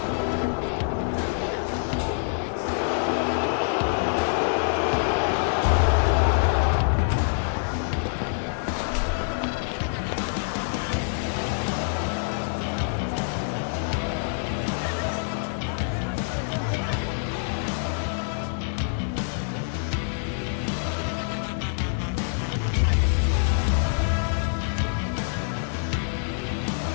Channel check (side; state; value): right; silent; 56 dB below the other